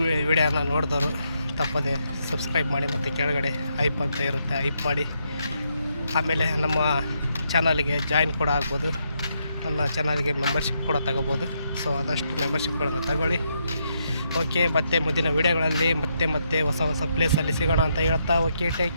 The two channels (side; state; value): both; inverted; correlation -0.78